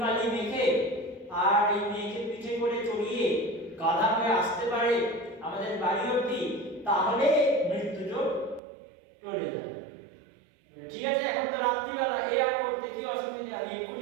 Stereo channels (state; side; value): drops out; left; at 8.6 s